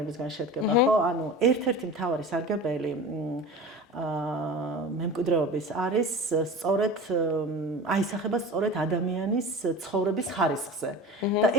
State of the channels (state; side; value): normal; both; correlation 0.35